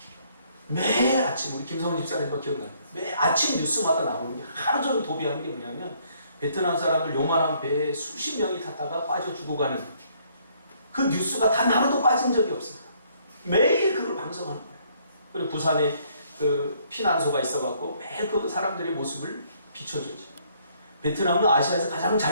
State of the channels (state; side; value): inverted; both; correlation -0.66